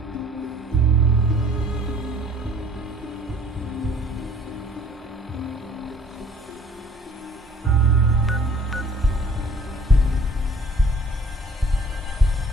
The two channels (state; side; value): normal; both; correlation 0.54